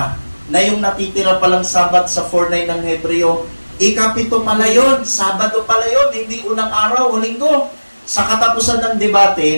na yung natitira palang Sabat sa 4:9 ng Hebreo, ikapito pala yun, Sabado pala yun, hindi unang araw o Linggo. Sa katapusan ng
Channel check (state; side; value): inverted; both; correlation -1.00